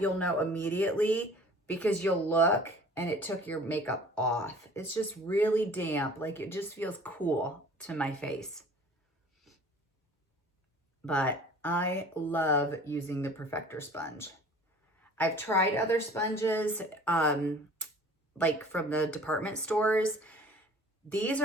know immediately because you'll look and it took your makeup off. It's just really damp. Like it just feels cool to my face. But I love using the Perfector Sponge. I've tried other sponges, like from the department stores. These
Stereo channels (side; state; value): both; normal; correlation 0.48